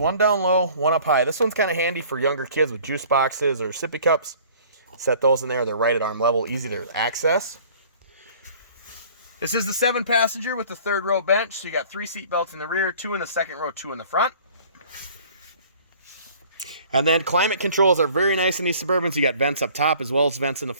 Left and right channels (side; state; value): both; inverted; correlation -0.51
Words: down low, one up high. This one's kind of handy for younger kids with juice boxes or sippy cups. Set those in there. They're right at arm level, easy to access. This is the 7-passenger with the third row bench. So you got 3 seat belts in the rear, 2 in the second row, 2 in the front. And then climate controls are very nice in these Suburbans. You got vents up top as well as vents in the